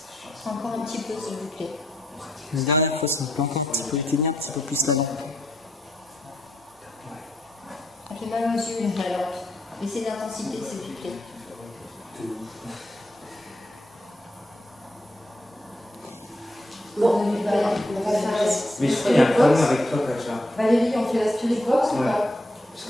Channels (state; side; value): normal; both; correlation 0.78